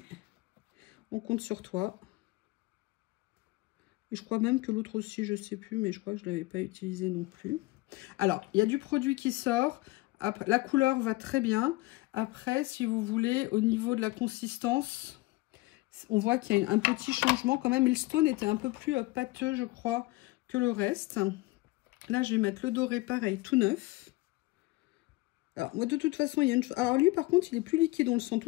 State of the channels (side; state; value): right; quieter; 21.1 dB